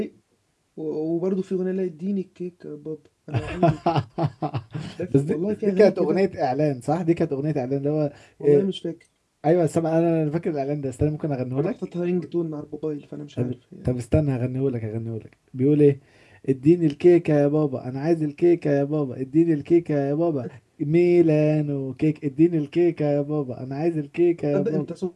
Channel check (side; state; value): both; identical; correlation 1.00